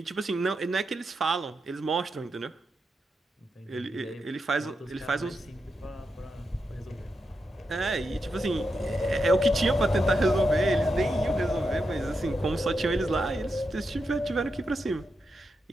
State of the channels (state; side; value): normal; both; correlation 0.86